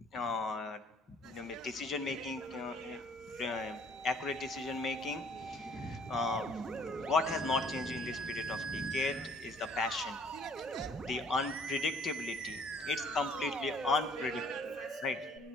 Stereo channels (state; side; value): normal; both; correlation 0.59